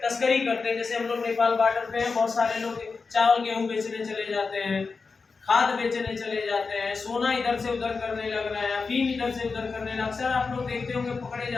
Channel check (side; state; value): right; quieter; 4.6 dB